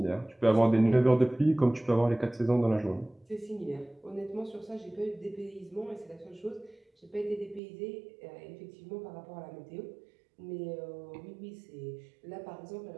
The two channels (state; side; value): drops out; left; at 7.6 s